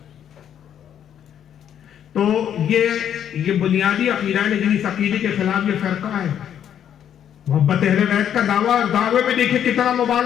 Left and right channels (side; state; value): right; quieter; 9.5 dB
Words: تو یہ بنیادی عقیدہ ہے, لیکن اس عقیدے کے خلاف یہ فرقہ ہے. محبت اہل بیت کا دعوے میں دیکھیں کتنا